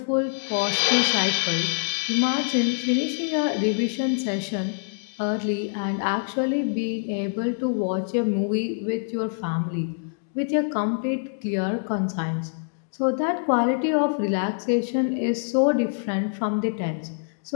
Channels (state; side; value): silent; right; digital silence